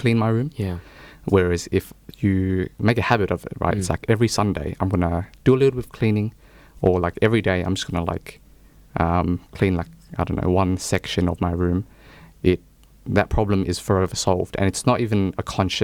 my room. Yeah. Whereas if you make a habit of it, right, it's like every Sunday I'm gonna do a little bit of cleaning, or like every day I'm just gonna like clean like I don't know one section of my room. That problem is forever solved, and it's not even a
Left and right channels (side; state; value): both; identical; correlation 1.00